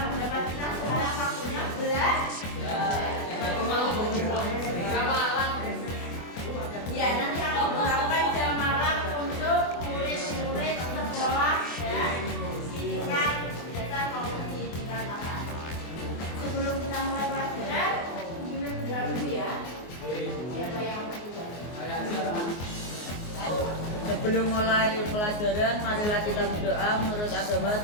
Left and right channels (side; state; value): right; late; 24 ms